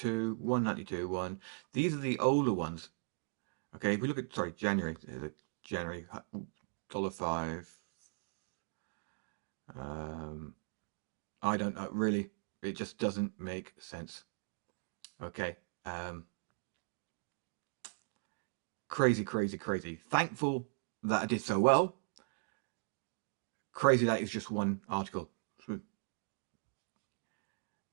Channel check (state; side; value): silent; left; digital silence